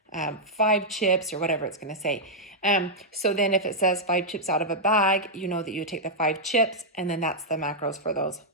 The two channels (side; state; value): both; normal; correlation -0.07